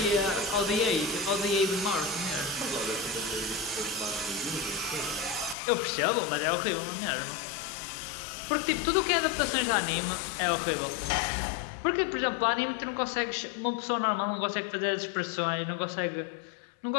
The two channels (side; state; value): right; drops out; at 5.6 s